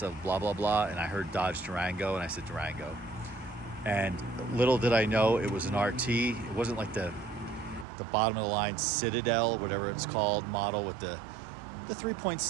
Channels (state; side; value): drops out; left; at 7.9 s